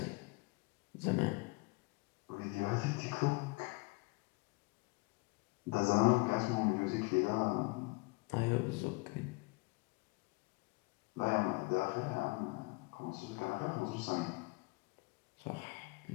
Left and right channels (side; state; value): right; quieter; 25.7 dB